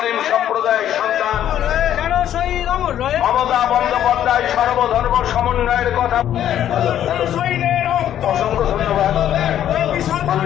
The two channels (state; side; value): quieter; right; 10.9 dB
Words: সম্প্রদায়ের সন্তান, মমতা বন্দ্যোপাধ্যায় সর্বধর্ম সমন্বয়ের কথা। অসংখ্য ধন্যবাদ